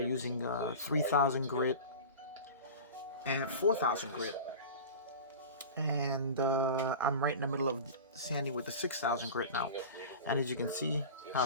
using 3000 grit and 4000 grit, and I'm right in the middle of sanding with the 6000 grit now. And as you can see how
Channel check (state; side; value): inverted; both; correlation -0.33